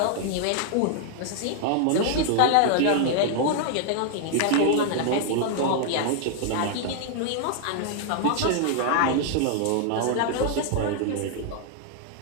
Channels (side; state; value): both; different; correlation 0.00